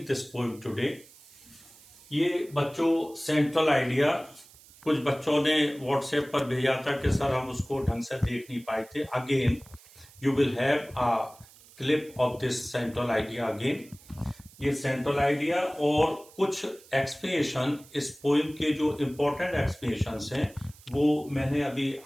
this poem today. ये बच्चों सेंट्रल आइडिया कुछ बच्चों ने व्हाट्सएप पर भेजा था कि सर हम उसको ढंग से देख नहीं पाए थे। Again you will have a clip of this central idea again. ये सेंट्रल आइडिया और कुछ एक्सप्लेनेशन इस पोइम के जो इम्पोर्टेंट एक्सप्लेनेशंस हैं वो मैंने अभी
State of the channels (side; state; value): right; noise; hiss, 24 dB below the sound